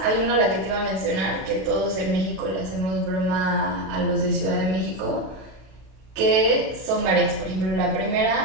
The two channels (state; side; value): late; left; 32 ms